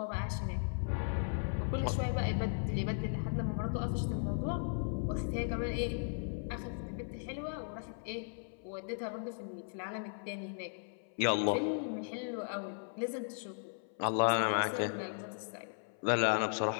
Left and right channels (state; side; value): silent; right; 53 dB below the other